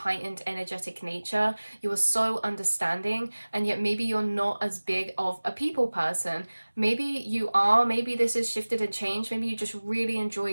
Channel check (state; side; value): inverted; both; correlation -1.00